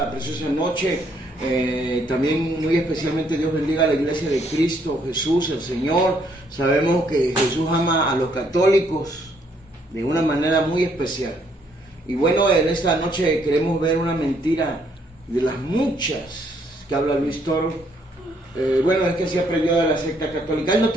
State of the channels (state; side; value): normal; both; correlation 0.69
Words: preciosa noche. También muy especialmente Dios bendiga a la iglesia de Cristo Jesús, el Señor. Sabemos que Jesús ama a los católicos de una manera muy especial. Y bueno, en esta noche queremos ver una mentira de las muchas que habla Luis Toro. Bueno, es que se aprendió de la secta católica. Él no